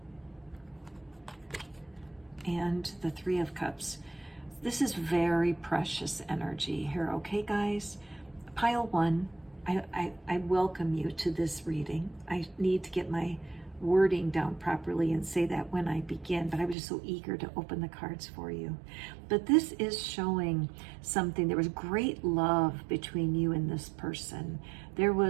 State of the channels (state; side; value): drops out; left; at 16.8 s